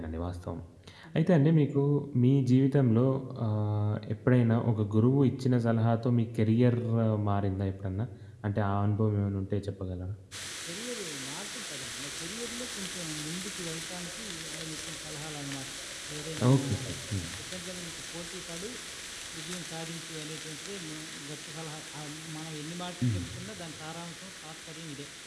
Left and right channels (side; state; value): both; identical; correlation 1.00